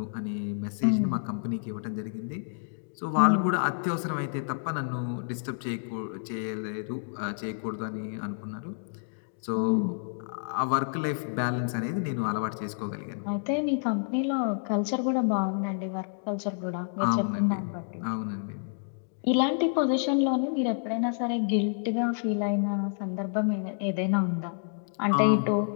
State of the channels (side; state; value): right; silent; digital silence